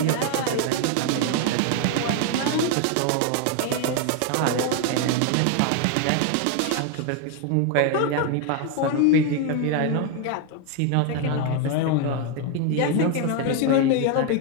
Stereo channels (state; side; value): different; both; correlation 0.01